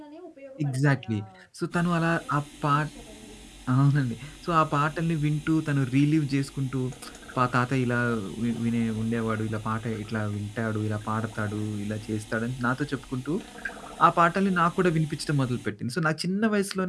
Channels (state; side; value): identical; both; correlation 1.00